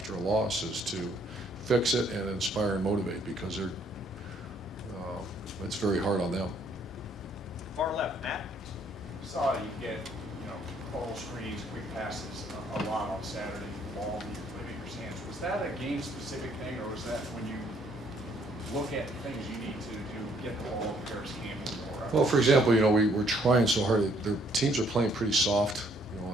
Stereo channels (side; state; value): both; normal; correlation 0.66